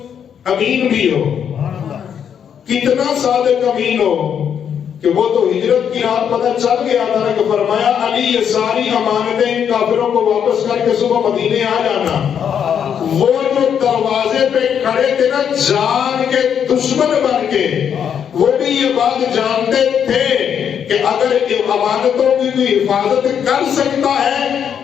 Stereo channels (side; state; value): right; quieter; 8.2 dB